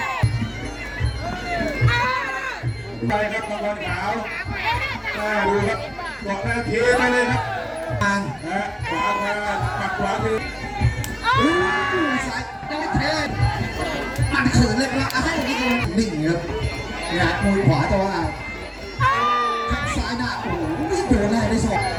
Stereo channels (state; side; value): identical; both; correlation 1.00